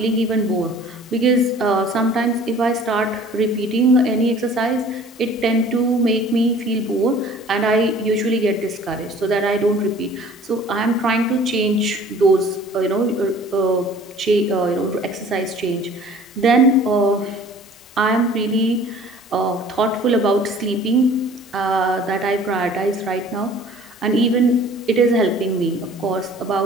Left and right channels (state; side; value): normal; both; correlation 0.49